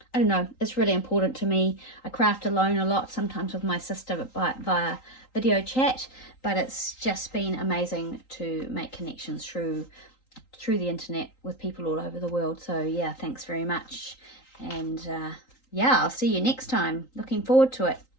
I don't know, it's really important to me. I craft alone a lot, sometimes with my sister via video chat, but it's just been amazing to make connections through the internet with people all over the world. So yeah, thanks very much, and yeah, I'll see you next time. Looking forward to it.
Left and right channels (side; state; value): right; late; 3.8 ms